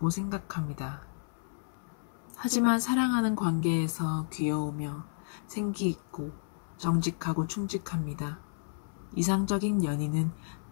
생각합니다. 하지만 사랑하는 관계에서 귀여우며 생기 있고 정직하고 충직합니다. 이상적인 연인은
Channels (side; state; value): right; silent; 57 dB below the other